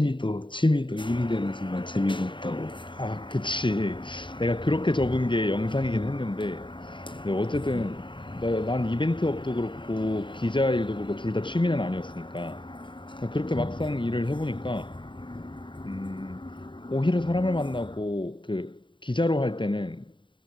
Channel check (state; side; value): late; right; 0.23 ms